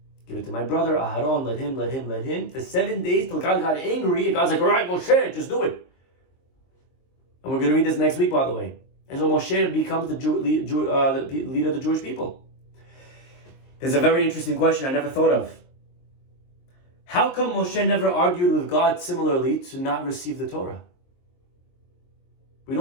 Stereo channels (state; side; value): late; right; 23 ms